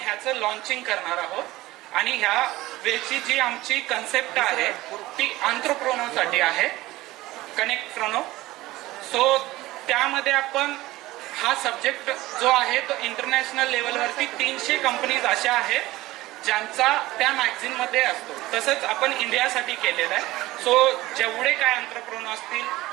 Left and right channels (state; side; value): quieter; left; 18.0 dB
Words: ह्याचं लॉन्चिंग करणार आहोत आणि ह्या वेळची जी आमची कन्सेप्ट आहे ती एंटरप्रेन्योरसाठी आहे, कनेक्ट प्रोनो. सो त्यामध्ये आपण हा सब्जेक्ट जो आहे तो इंटरनॅशनल लेवलवरती 300 कंपनीज अशा आहेत ज्यांचा त्या मॅगझिन मध्ये असतो. तसंच आपण इंडियासाठी केलेलं आहे. सो जेवढे काय एंटरप्रेन्योर असतील,